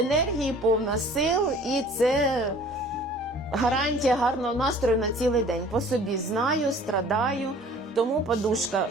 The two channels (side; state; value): both; normal; correlation 0.50